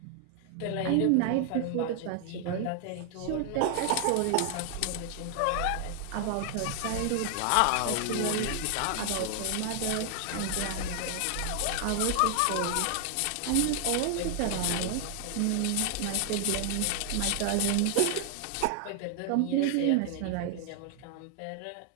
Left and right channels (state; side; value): different; both; correlation 0.00